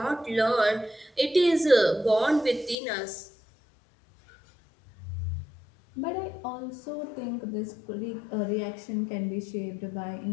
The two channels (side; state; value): right; drops out; at 2.8 s